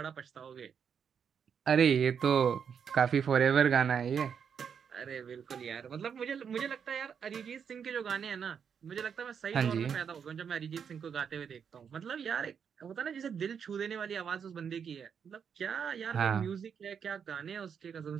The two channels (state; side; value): quieter; left; 7.2 dB